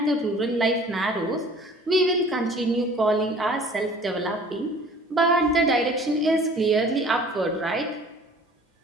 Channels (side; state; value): both; normal; correlation 0.49